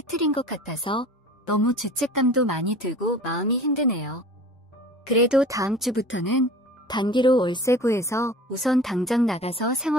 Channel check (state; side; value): normal; both; correlation 0.41